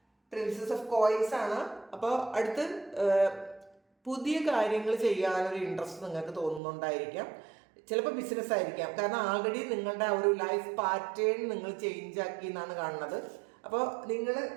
പ്രിൻസസ് ഓഫ് കോയിൻസ് ആണ്. അപ്പോൾ അടുത്ത് പുതിയ കാര്യങ്ങൾ ചെയ്യാനൊരു ഇൻട്രസ്റ്റ് നിങ്ങൾക്ക് തോന്നുന്നുണ്ടായിരിക്കാം. ചിലപ്പോൾ ബിസിനസ് ആയിരിക്കാം. കാരണം ആൾറെഡി നിങ്ങളുടെ ആ ഒരു ലൈഫ് പാറ്റേൺ നിങ്ങൾ ചേഞ്ച് ആക്കി എന്നാണ് കാണുന്നത്. അപ്പോൾ നിങ്ങൾ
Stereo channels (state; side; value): drops out; left; at 6.6 s